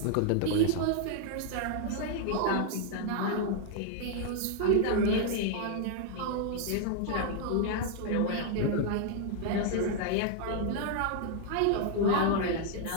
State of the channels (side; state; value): both; different; correlation 0.00